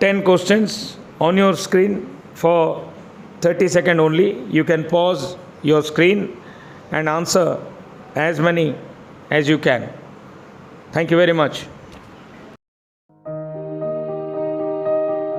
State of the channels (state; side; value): identical; both; correlation 1.00